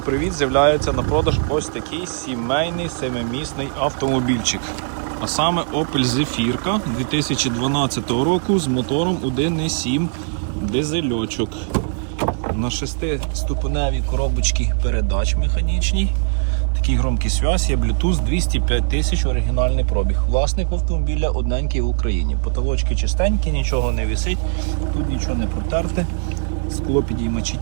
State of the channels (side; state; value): left; silent; digital silence